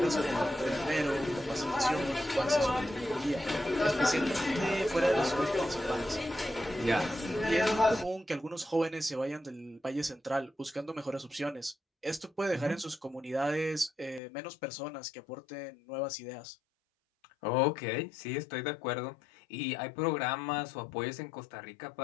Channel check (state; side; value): drops out; right; at 14.2 s